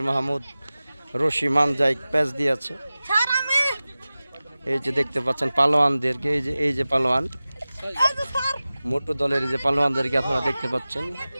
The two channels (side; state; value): both; inverted; correlation -0.97